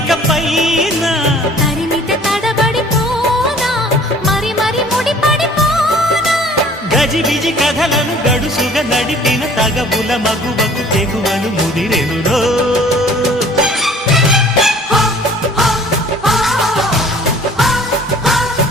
పైన తరిమితే తడబడిపోనా మరి మరి ముడిపడిపోనా గజిబిజి కథలను గడుసుగా నడిపిన తగవుల మగువకు తెగువను ముదిరెనురో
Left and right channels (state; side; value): normal; both; correlation 0.52